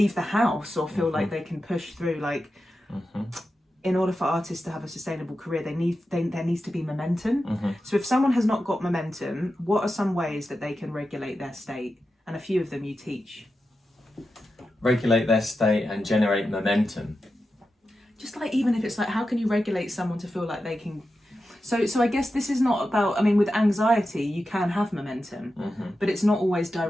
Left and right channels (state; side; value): normal; both; correlation 0.91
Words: the house or feel like they can push through. Like in order for artists to have a sustainable career, there needs to be momentum. So if someone has not got momentum, what are some ways that they can regulate their state? And a few of them you teach. Regulate their state and generate momentum. Just like, even if it's like, how can you regulate someone to feel like they can? So I guess this is not about, I mean, with anxiety, you can have momentum, but it's not always